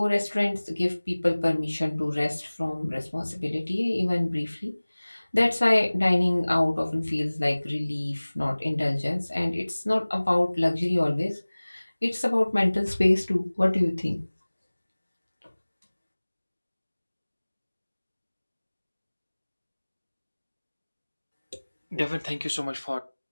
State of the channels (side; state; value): both; inverted; correlation -1.00